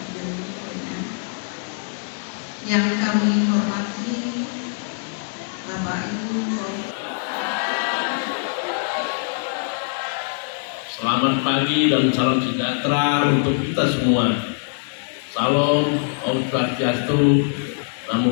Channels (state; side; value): silent; right; digital silence